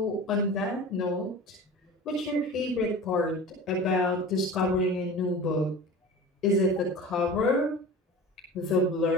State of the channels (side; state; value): both; normal; correlation 0.35